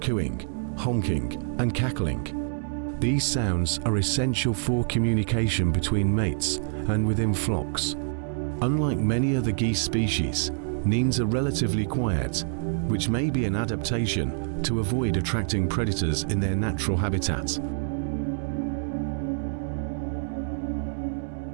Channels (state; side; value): silent; left; digital silence